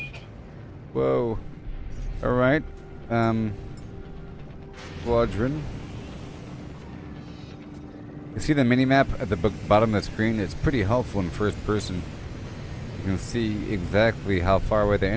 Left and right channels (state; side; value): identical; both; correlation 1.00